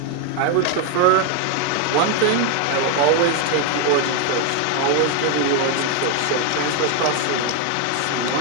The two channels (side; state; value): both; different; correlation 0.01